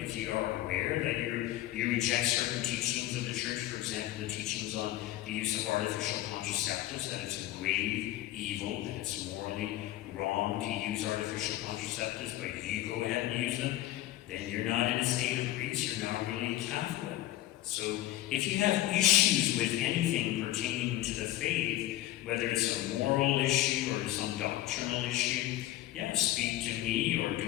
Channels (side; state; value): right; quieter; 14.9 dB